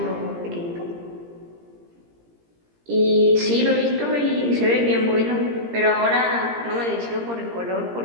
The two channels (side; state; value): left; late; 17 ms